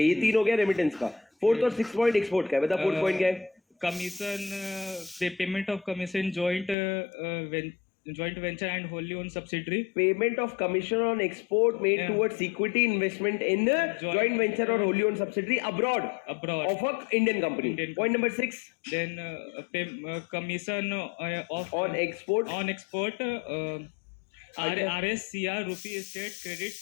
ये 3 हो गया रेमिटेंस का। 4th और 6th पॉइंट एक्सपोर्ट का है। बता 4th पॉइंट क्या है? Commission, payment of commission joint venture and wholly owned subsidiary, payment of commission on export made towards equity investment in joint venture और wholly owned subsidiary abroad of a Indian company. Point number 6, then commission of on export RSCR rupee state credit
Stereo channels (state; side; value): drops out; right; at 6.8 s